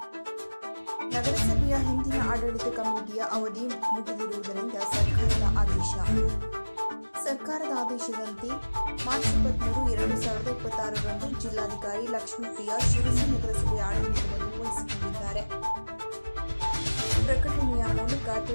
ನಗರಸಭೆಯ ಹಿಂದಿನ ಆಡಳಿತ ಕಮಿಟಿಯ ಅವಧಿ ಮುಗಿದಿರುವುದರಿಂದ ಸರ್ಕಾರದ ಆದೇಶದಂತೆ ಮಾರ್ಚ್ 23, 2026ರಂದು ಜಿಲ್ಲಾಧಿಕಾರಿ ಲಕ್ಷ್ಮೀಪ್ರಿಯಾ ಶಿರಸಿ ನಗರಸಭೆಯ ಆಡಳಿತವನ್ನು ವಹಿಸಿಕೊಂಡಿದ್ದಾರೆ. ಪ್ರಕಟಣೆಯ ಮೂಲಕ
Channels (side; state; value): both; inverted; correlation -1.00